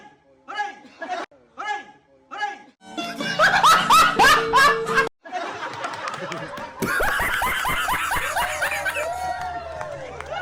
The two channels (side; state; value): both; identical; correlation 1.00